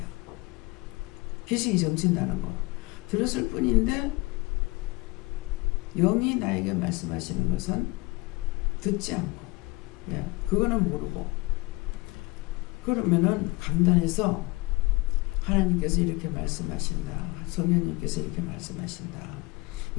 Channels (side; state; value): right; quieter; 23.9 dB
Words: 귀신이 정친다는 거 들었을 뿐인데 영이 나에게 말씀하시는 것은 듣지 않고 그거는 모르고 그러면은 강단에서 하나님께서 이렇게 말씀하신다. 성령님께서 이렇게 말씀하신다.